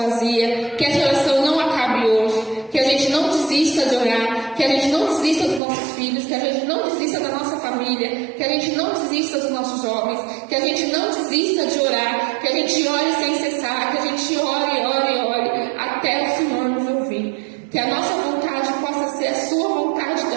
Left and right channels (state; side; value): drops out; left; at 5.6 s